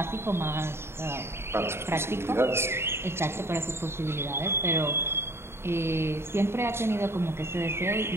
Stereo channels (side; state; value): left; late; 0.12 ms